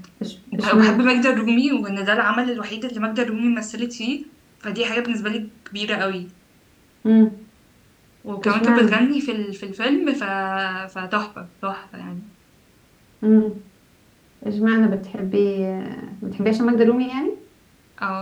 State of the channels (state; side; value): identical; both; correlation 1.00